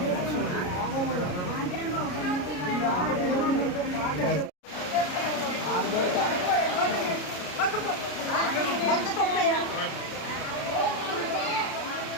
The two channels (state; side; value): late; right; 33 ms